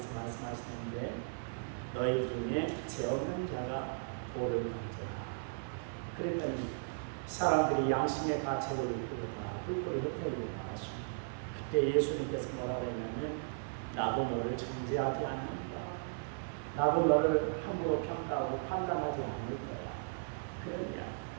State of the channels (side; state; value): left; silent; 53 dB below the other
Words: 말씀하시는데, 너희 중에 죄 없는 자가 돌을 던져라. 그랬더니 사람들이 양심의 가책을 느끼고 다 뿔뿔이 흩어지고 나왔습니다. 그때 예수님께서 뭐라고 했냐면, 나도 너를 정죄하지 않는다. 나도 너를 함부로 평가하고 판단하지 않을 거야. 그런 이야기.